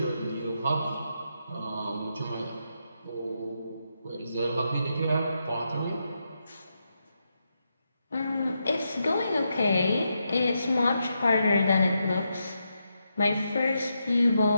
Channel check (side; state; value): both; inverted; correlation -0.84